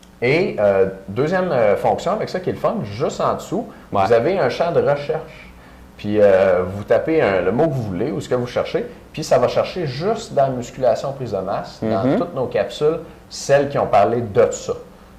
Et deuxième fonction avec ça qui est le fun, juste en dessous, vous avez un champ de recherche. Puis vous tapez le mot que vous voulez ou ce que vous cherchez, puis ça va chercher juste dans la musculation prise de masse, dans toutes nos capsules, celles qui ont parlé de ça.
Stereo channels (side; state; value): both; identical; correlation 1.00